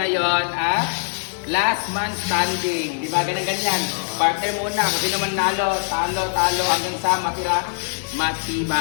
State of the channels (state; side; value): silent; right; digital silence